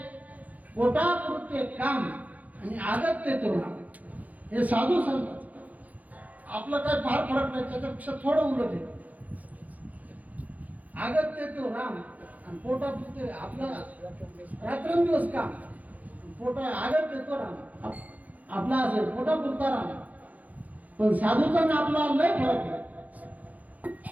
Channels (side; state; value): left; late; 0.077 ms